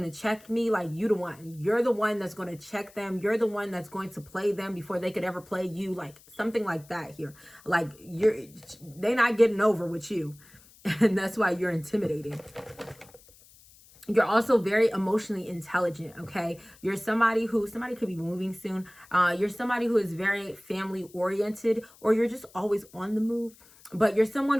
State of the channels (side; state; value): left; noise; hiss, 25 dB below the sound